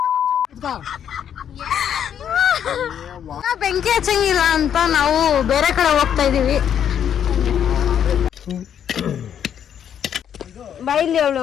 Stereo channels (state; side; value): quieter; right; 9.0 dB